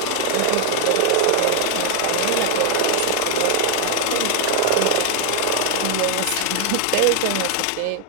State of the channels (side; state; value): both; different; correlation 0.00